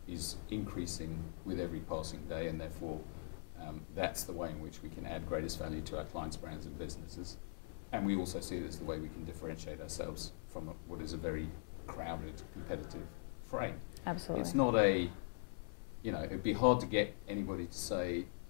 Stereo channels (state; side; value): silent; right; digital silence